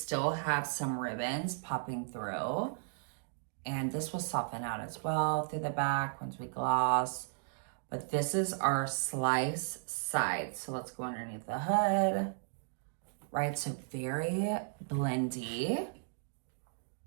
have some ribbons popping through. And this will soften out as well through the back once we gloss. But this is our slice side. So let's go underneath the hood, right? So very blendy,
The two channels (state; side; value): silent; left; digital silence